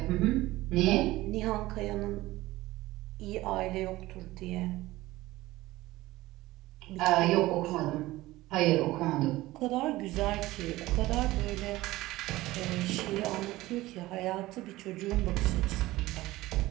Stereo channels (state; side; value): quieter; left; 17.9 dB